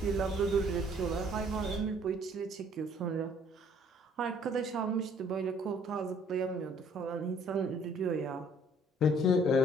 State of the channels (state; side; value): normal; both; correlation 0.60